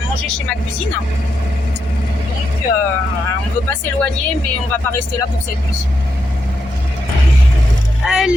manger chez ma cousine. Donc, on ne veut pas s'éloigner, mais on va pas rester là pour cette nuit.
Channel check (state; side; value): normal; both; correlation 0.83